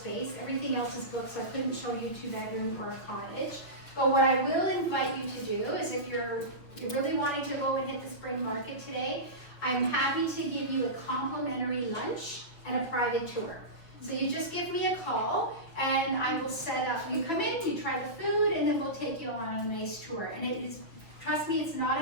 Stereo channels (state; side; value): late; right; 6.1 ms